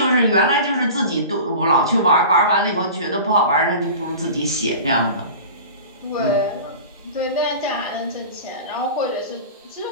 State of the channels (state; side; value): inverted; both; correlation -0.36